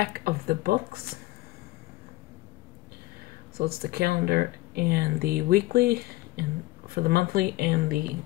of the books. So it's the calendar and the weekly, and for the monthly and the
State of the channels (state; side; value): quieter; right; 18.7 dB